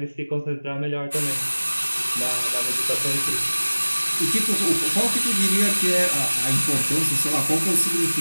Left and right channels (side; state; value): both; inverted; correlation -1.00